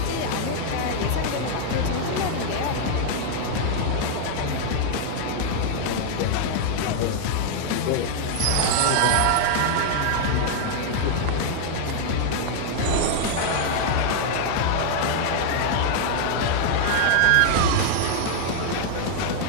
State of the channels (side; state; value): both; different; correlation -0.01